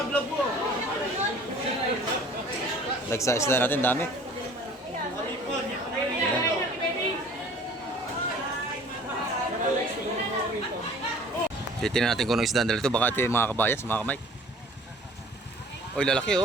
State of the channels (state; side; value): normal; both; correlation 0.50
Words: mo. Lagsa isda natin, dami. Yan. Titignan natin kung anong isda dito. Baka ito yung mga kabayas, mga kamay. Oy, lalaki